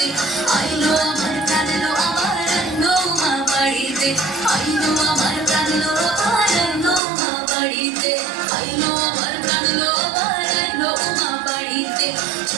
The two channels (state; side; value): drops out; left; at 7.0 s